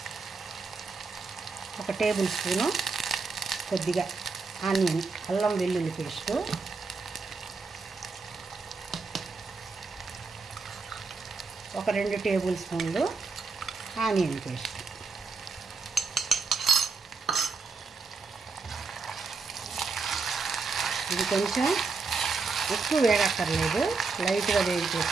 1 టేబుల్ స్పూను కొద్దిగా ఆనియన్ అల్లం వెల్లుల్లి పేస్టు, ఒక 2 టేబుల్ స్పూన్లు ఆనియన్ పేస్ట్, ఇది కొంచెం ఎక్కువ వేడక్కర్లేదు, లైట్గా వేడితే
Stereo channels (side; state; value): left; quieter; 4.5 dB